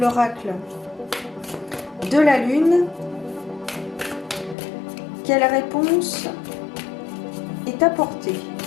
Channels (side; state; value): right; drops out; at 4.5 s